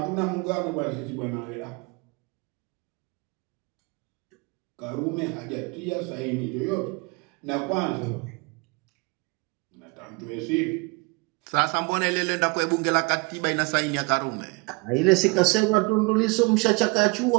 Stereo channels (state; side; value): quieter; left; 28.2 dB